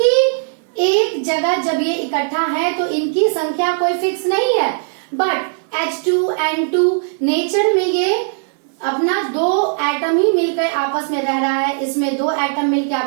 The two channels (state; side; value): silent; left; digital silence